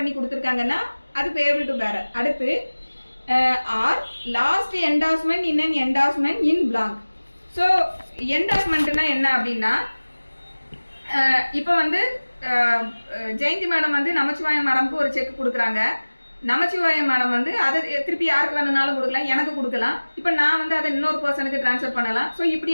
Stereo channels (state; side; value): inverted; both; correlation -1.00